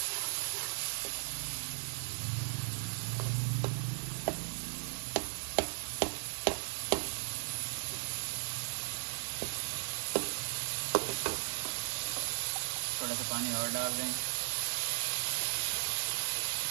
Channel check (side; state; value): left; silent; digital silence